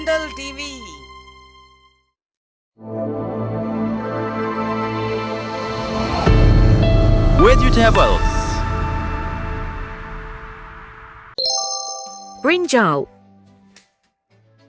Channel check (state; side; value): identical; both; correlation 1.00